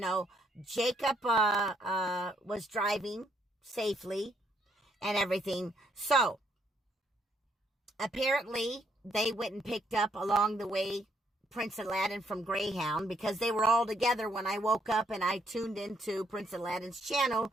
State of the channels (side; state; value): both; normal; correlation 0.71